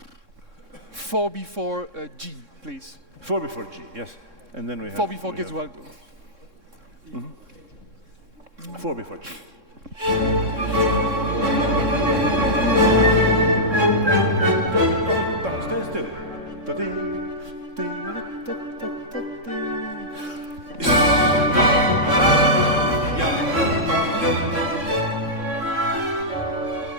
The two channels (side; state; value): left; late; 3.6 ms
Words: 4 before G, please. 4 before G, yes. And then we have 4 before Gesualdo. 4 before G. Stay still.